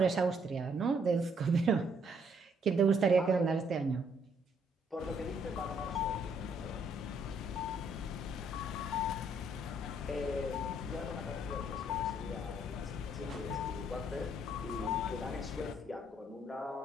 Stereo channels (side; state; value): both; normal; correlation 0.68